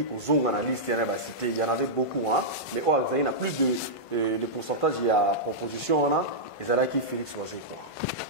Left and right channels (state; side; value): late; right; 1.5 ms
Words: pour Zong analyste, il y en avait beaucoup, hein, mais Ozaki, il y a plus de pourcentage, il y a proposition, et Zalaki Félix Oazé, quoi.